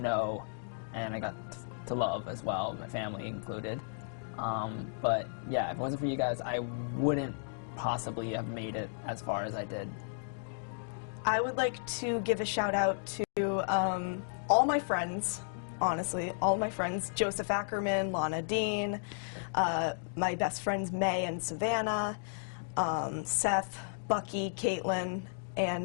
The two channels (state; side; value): silent; right; digital silence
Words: know, and I got to love as well, my family included. But yeah, if it wasn't for you guys, I wouldn't possibly have made it as far as I did. I would like to give a shout out to all my friends, honestly, all my friends, Joseph Ackerman, Lana Dean, my best friends May and Savannah, Seth, Bucky, Caitlin, and